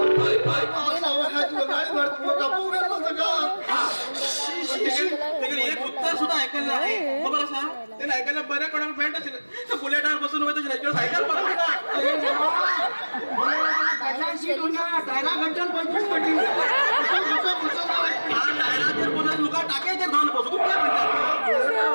एक उत्तर सुद्धा ऐकायला आहे खबर असा त्याला ऐकायला बऱ्या कोणाला पॅन्ट असेल बुलेटावर बसून होतं सायकल डायरा घंटन 25 पटी लुका टाकायचे धान बसू तू काय म्हणतात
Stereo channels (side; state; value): both; inverted; correlation -1.00